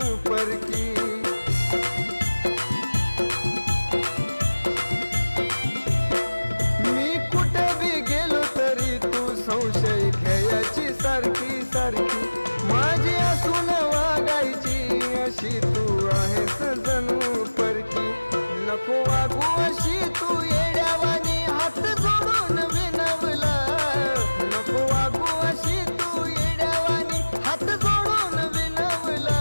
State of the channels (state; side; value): inverted; both; correlation -1.00